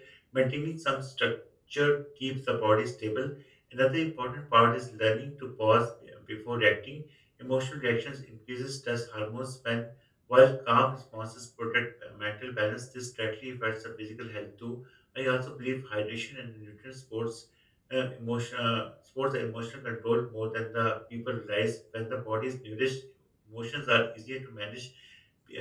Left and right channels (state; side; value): identical; both; correlation 1.00